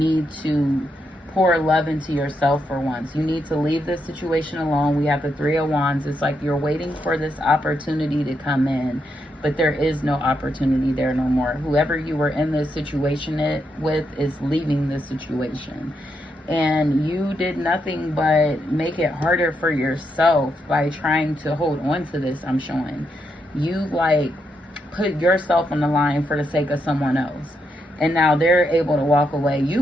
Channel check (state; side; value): normal; both; correlation 0.81